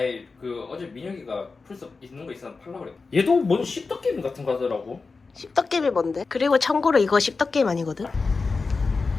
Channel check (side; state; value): right; quieter; 4.3 dB